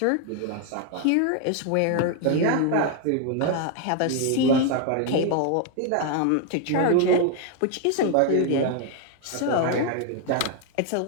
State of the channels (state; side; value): different; both; correlation 0.00